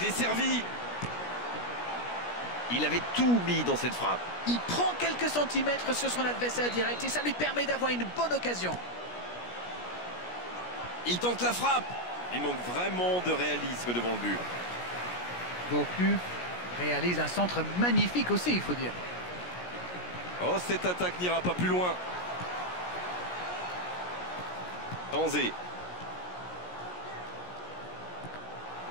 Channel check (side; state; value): right; late; 17 ms